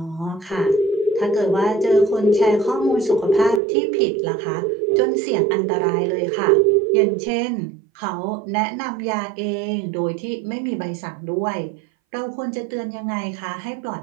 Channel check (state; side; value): drops out; left; at 3.6 s